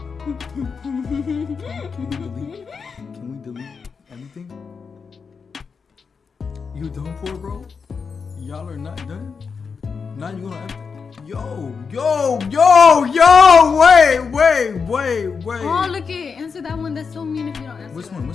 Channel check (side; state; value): right; quieter; 5.5 dB